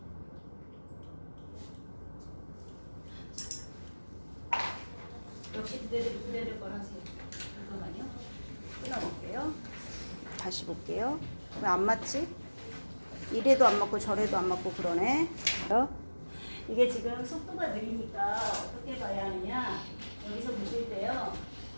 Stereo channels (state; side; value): inverted; both; correlation -1.00